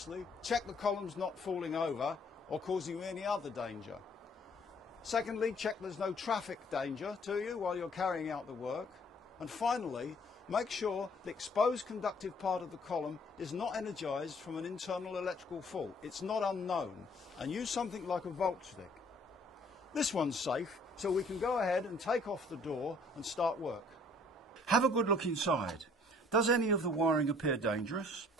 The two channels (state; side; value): normal; both; correlation 0.59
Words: check the column's not falling over or causing you any other danger. Secondly, check there's no traffic danger to you while you're carrying out the work. And finally, make sure the exposed conductive part of the column is not energised from an internal electrical fault. It's not unknown, and use something like a volt stick. This one's safe, so we can go ahead and take off the door and start work. Have a good look inside. Does any of the wiring appear dangerous?